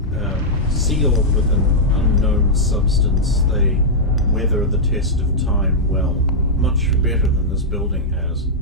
Sealed with an unknown substance, they weather the test of time well, much better than this building has.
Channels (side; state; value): both; normal; correlation -0.07